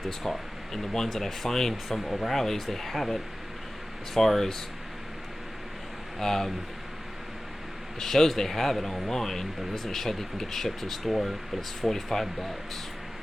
this car. And the ones that I find from O'Reilly's, they have it. As far as it shows they have it online, but it doesn't show that you can get it shipped to the store, but it's $45.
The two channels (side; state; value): both; normal; correlation 0.96